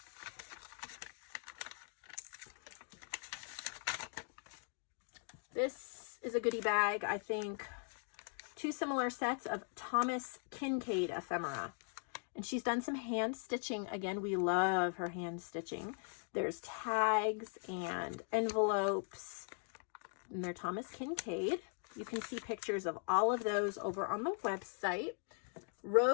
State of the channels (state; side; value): silent; right; 51 dB below the other